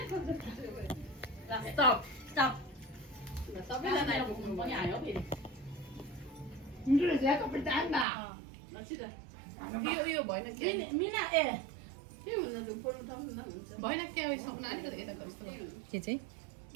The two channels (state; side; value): drops out; left; at 8.1 s